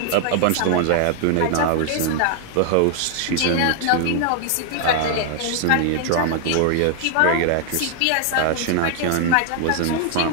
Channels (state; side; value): different; both; correlation 0.00